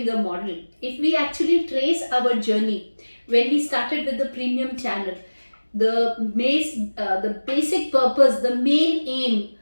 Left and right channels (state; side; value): inverted; both; correlation -1.00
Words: model, if we actually trace our journey when we started with the premium channel, the basic purpose, the main aim,